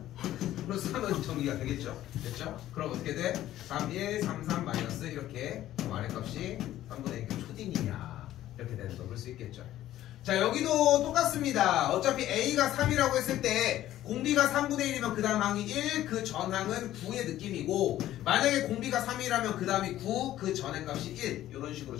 플러스 3은 정리가 되겠죠. 됐죠? 그럼 어떻게 돼? 3, 1, 3, 3 마이너스 이렇게 R의 값이 3분의 1 초딩이냐 이렇게 되는 거 볼 수 있겠죠. 자, 여기도 똑같습니다. 어차피 A가 3이라고 했을 때 공비가 3분의 1이면 그 다음 항이 1, 그 전항은 9의 느낌이고, 만약에 공비가 3이라면 그 다음이 9, 그 전의 값이 1, 이런 식으로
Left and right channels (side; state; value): right; quieter; 13.5 dB